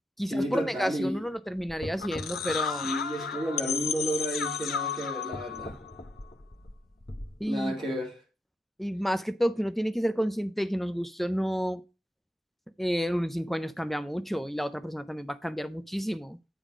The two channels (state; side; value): normal; both; correlation 0.84